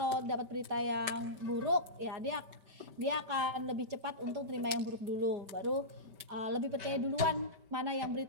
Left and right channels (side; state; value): left; late; 5.1 ms